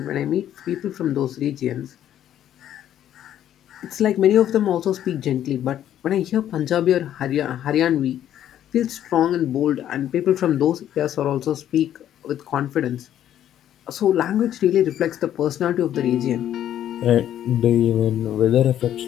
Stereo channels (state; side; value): quieter; right; 11.1 dB